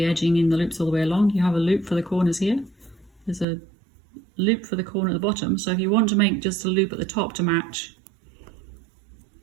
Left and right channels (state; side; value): drops out; left; at 3.5 s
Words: edging in the loops all the way along. You have a loop for the corners here. There's a loop for the corner at the bottom. So if you want to make just a loop at the top to match,